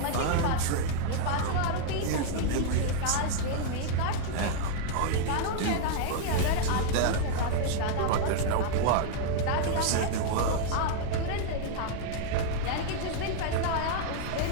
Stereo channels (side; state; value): both; different; correlation 0.00